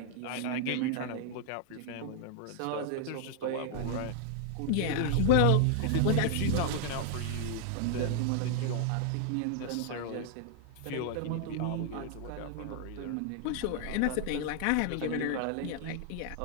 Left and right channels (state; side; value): different; both; correlation 0.00